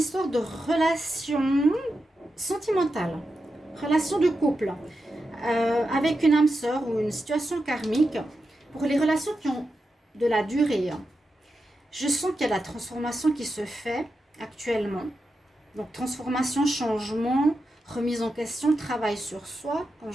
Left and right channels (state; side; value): normal; both; correlation 0.89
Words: de relation sentimentale, relation de couple, avec une âme sœur ou une situation karmique. Pour les relations qui ont de la durée, je sens qu'il y a la transformation qui se fait actuellement. Donc transformation, changement, remise en question, travail sur soi, comme